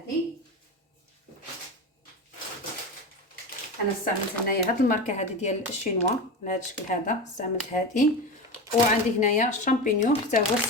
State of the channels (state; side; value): normal; both; correlation 0.23